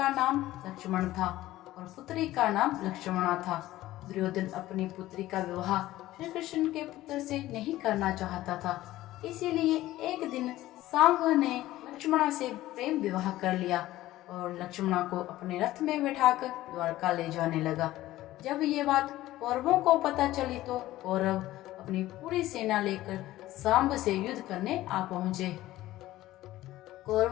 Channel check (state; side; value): quieter; right; 15.8 dB